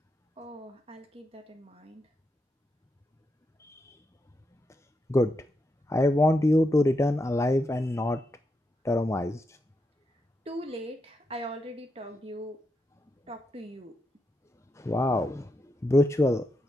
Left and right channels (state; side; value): normal; both; correlation 0.84